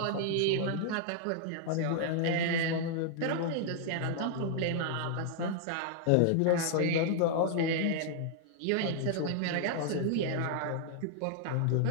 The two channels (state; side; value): different; both; correlation -0.01